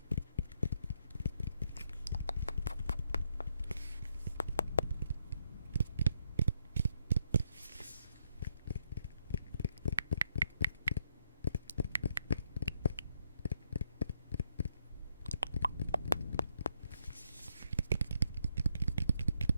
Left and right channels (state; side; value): inverted; both; correlation -0.75